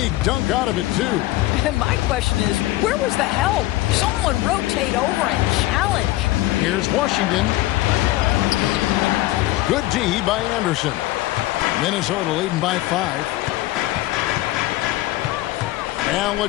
dunk out of it, too. And my question is, where was the help? Someone rotate over and challenge. Here's Washington. Good D by Anderson. Minnesota leading by 5.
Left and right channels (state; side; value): quieter; right; 17.3 dB